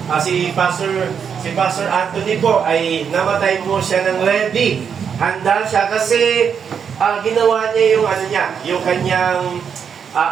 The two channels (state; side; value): quieter; left; 7.1 dB